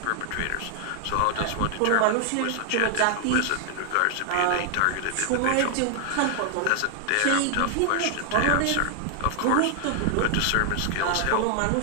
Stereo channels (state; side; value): different; both; correlation 0.00